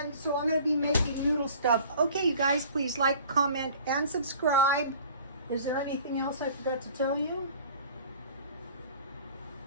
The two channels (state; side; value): inverted; both; correlation -0.47